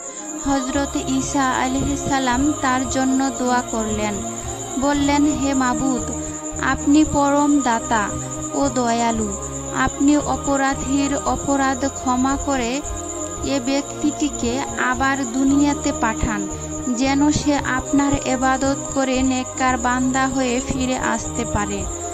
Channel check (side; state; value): both; identical; correlation 1.00